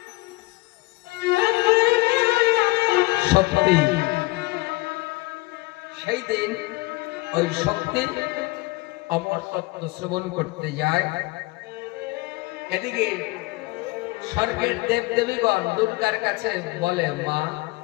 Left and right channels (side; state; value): right; quieter; 22.9 dB